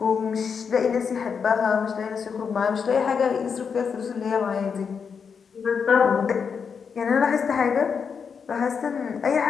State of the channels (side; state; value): right; quieter; 6.2 dB